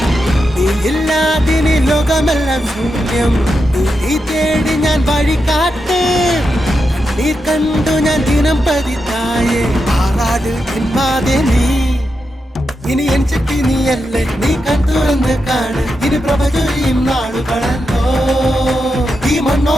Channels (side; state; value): both; normal; correlation 0.87